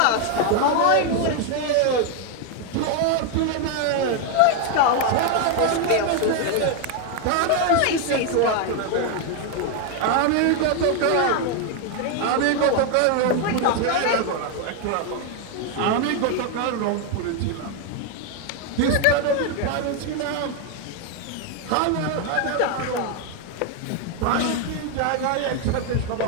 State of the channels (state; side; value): different; both; correlation 0.01